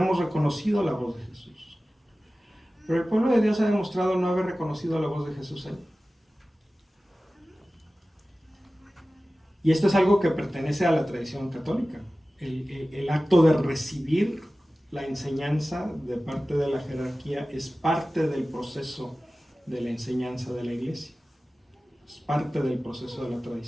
reconocido la voz de Jesús. Pero el pueblo de Dios ha demostrado no haber reconocido la voz de Jesús ahí. Y esto es algo que pertenece a la tradición católica. El acto de recibir la enseñanza de parte de la jerarquía es parte del proceso de la enseñanza de la iglesia. Es parte del proceso de la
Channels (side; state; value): both; normal; correlation 0.96